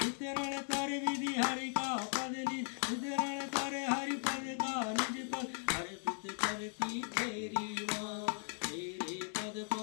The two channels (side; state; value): right; silent; 52 dB below the other